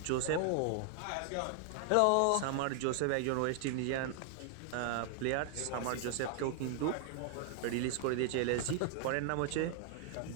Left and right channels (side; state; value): both; different; correlation 0.00